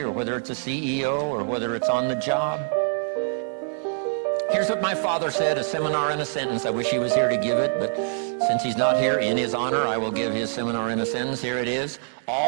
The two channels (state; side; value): silent; left; digital silence